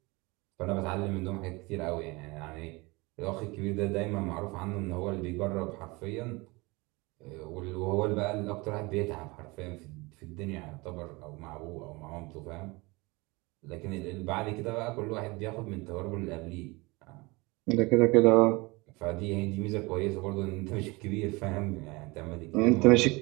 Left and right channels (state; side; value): quieter; left; 24.6 dB